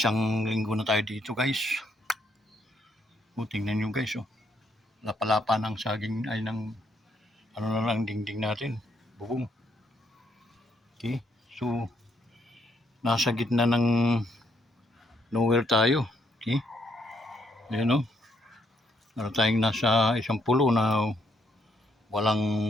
linggo na tayo dito guys. Tingnan nyo guys, lapalapa ng saging ay ng ano na lang dingding natin, bubong. Okay, so nasa gitna ng nowhere tayo. Okay, ayan ano tayong nasa isang pulo na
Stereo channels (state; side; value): normal; both; correlation 0.73